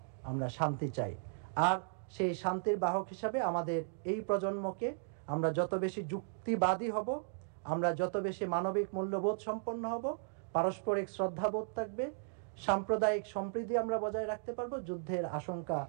আমরা শান্তি চাই। আর সেই শান্তির বাহক হিসাবে আমাদের এই প্রজন্মকে আমরা যত বেশি যুক্তিবাদী হব, আমরা যত বেশি মানবিক মূল্যবোধ সম্পন্ন হব, পারস্পরিক শ্রদ্ধাবোধ থাকবে, সাম্প্রদায়িক সম্প্রীতি আমরা বজায় রাখতে পারবো, যুদ্ধের আশঙ্কা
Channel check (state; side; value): silent; left; digital silence